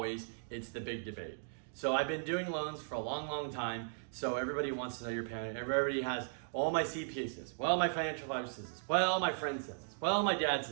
the big debate. So I've been doing loans for a long time, so everybody wants to know your payment. Everybody has, all my CPA says, well, my financial advisor says this, well, my friend says this, well, my dad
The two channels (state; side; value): silent; left; digital silence